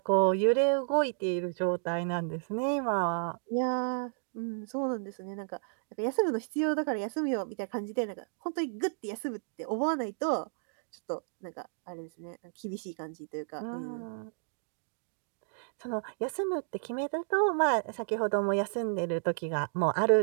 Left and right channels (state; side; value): silent; left; digital silence